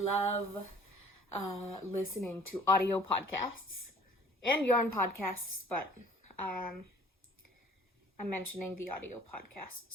listening to audio podcasts and yarn podcasts, but I'm mentioning the audio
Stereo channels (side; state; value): both; normal; correlation 0.52